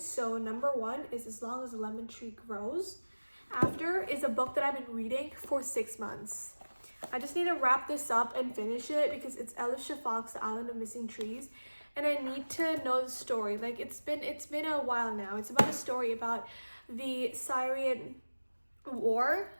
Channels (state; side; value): inverted; both; correlation -1.00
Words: So number 1 is As Long as the Lemon Tree Grows. After is a book that I've been reading for 6 months. I just need to wrap this up and finish it because it's Elif Shafak's The Island of Missing Trees, and I need to know the story. Like it's been a while now. It's about a story about the Syrian war